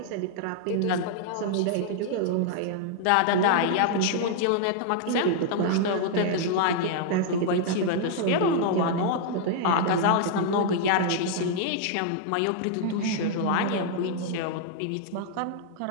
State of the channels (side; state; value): both; different; correlation -0.01